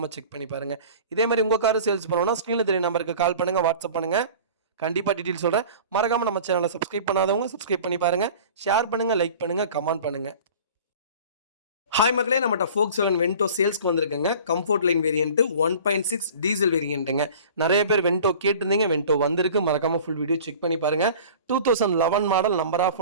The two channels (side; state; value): both; inverted; correlation -0.42